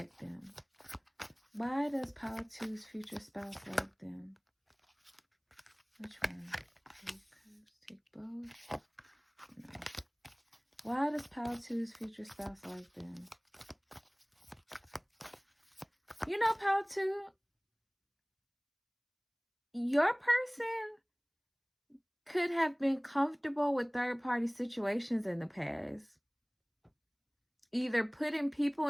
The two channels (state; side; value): identical; both; correlation 1.00